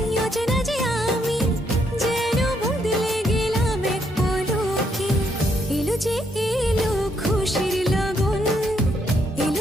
অচেনা যে আমি, যেন বদলে গেলাম এক পলকে। এলো যে এলো খুশির লগন,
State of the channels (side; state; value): both; normal; correlation 0.74